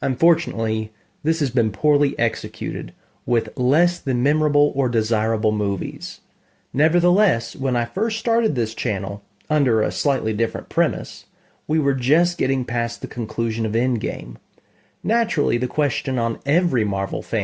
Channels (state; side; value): identical; both; correlation 1.00